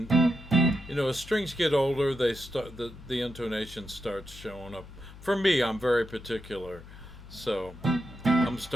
as strings get older, they start the intonation starts showing up. For me, I'm very particular, so I'm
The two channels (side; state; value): left; noise; hum, 17 dB below the sound